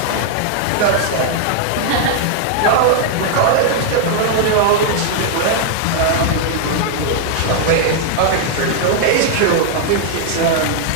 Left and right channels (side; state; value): both; different; correlation -0.01